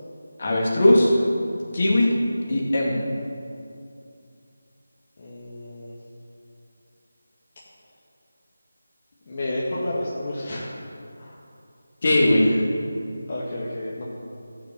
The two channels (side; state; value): both; inverted; correlation -0.95